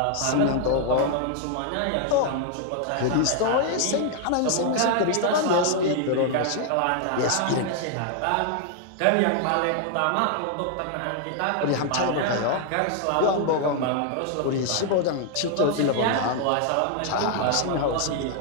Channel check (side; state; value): both; different; correlation 0.00